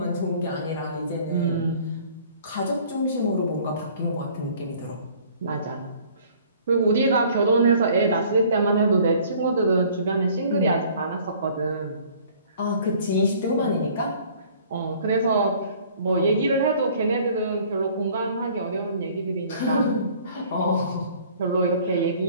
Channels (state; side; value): inverted; both; correlation -0.54